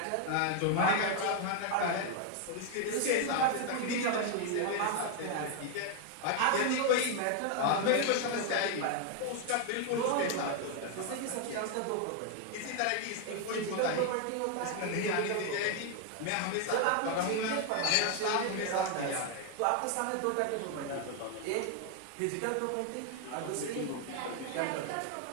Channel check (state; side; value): different; both; correlation 0.00